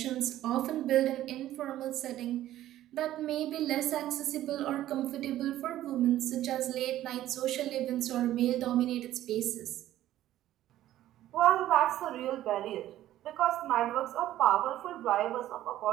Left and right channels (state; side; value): quieter; left; 13.5 dB